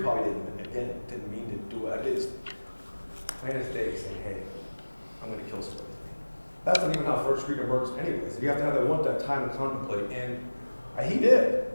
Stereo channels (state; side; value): inverted; both; correlation -1.00